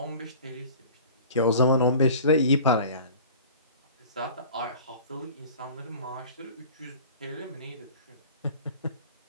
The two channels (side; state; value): both; inverted; correlation -0.43